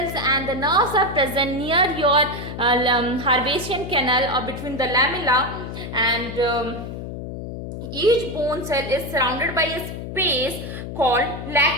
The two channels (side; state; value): left; noise; hum, 8 dB below the sound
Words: and the nerves are present near your Harvasian canal or between the lamella, and each bone cell is surrounded by a space called